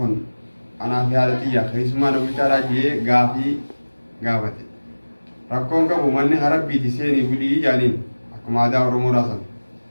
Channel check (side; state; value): both; inverted; correlation -1.00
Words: kun أنا في حالتي يا أخي اسمه أنا بيشارة جيه غافي غافتي ركون كابو مني هرب بيتسيني بودي جانين أكو ماذا أورمو راسن